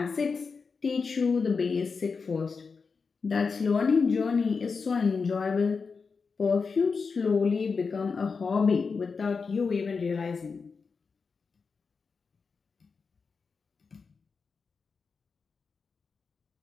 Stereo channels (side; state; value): right; quieter; 5.0 dB